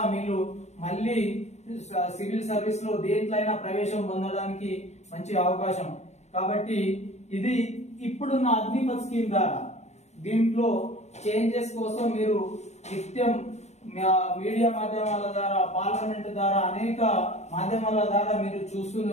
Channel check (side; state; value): right; late; 0.32 ms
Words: మీరు మళ్ళీ సివిల్ సర్వీస్ లో దేంట్లైనా ప్రవేశం పొందడానికి మంచి అవకాశం. కాబట్టి ఇది ఇప్పుడున్న అగ్నిపథ్ స్కీమ్ ద్వారా దీంట్లో చేంజెస్ కోసం మీరు నిత్యం మీడియా మాధ్యమాల ద్వారా, పార్లమెంట్ ద్వారా, అనేక మాధ్యమాల ద్వారా మీరు